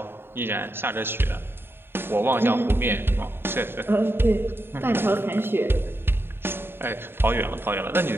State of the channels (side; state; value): left; late; 0.11 ms